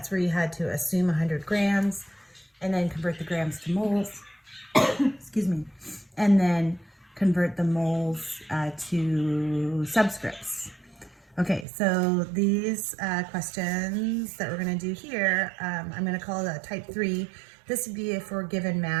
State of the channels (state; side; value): drops out; left; at 11.7 s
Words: where you had to assume 100 grams and then convert the grams to moles, excuse me, and then convert the moles to subscripts. Okay, so these questions that we're going to do here, I'm going to call it type 3. This would be if we're given